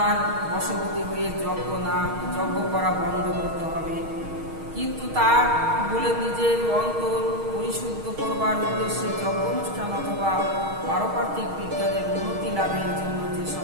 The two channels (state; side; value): late; left; 6.4 ms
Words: বশবর্তী হয়ে যজ্ঞ করা বন্ধ করতে হবে। কিন্তু তা বলে নিজের অন্তর পরিশুদ্ধ করবার উদ্দেশ্যে যজ্ঞ অনুষ্ঠান অথবা পারমার্থিক বিজ্ঞানের উন্নতি লাভের জন্য যে